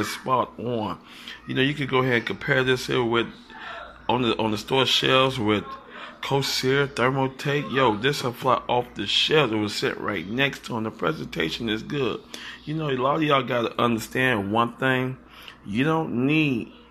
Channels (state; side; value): identical; both; correlation 1.00